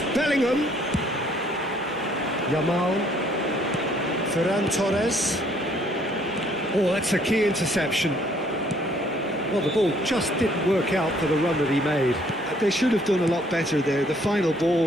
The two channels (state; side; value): noise; right; hum, 30 dB below the sound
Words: Bellingham. Yamal. Ferran Torres. Oh, that's a key interception. Well, the ball just didn't work out for the run that he made. They should have done a lot better there. The final